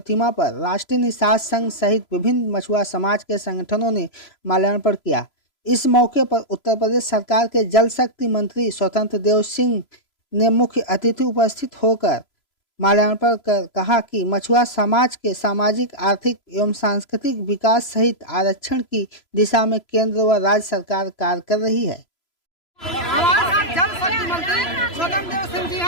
पर राष्ट्रीय निषाद संघ सहित विभिन्न मछुआ समाज के संगठनों ने माल्यार्पण किया। इस मौके पर उत्तर प्रदेश सरकार के जल शक्ति मंत्री स्वतंत्र देव सिंह ने मुख्य अतिथि उपस्थित होकर माल्यार्पण कर कहा कि मछुआ समाज के सामाजिक, आर्थिक एवं सांस्कृतिक विकास सहित आरक्षण की दिशा में केंद्र व राज्य सरकार कार्य कर रही है। हमारे साथ जल शक्ति मंत्री स्वतंत्र देव सिंह जी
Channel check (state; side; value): late; right; 3.0 ms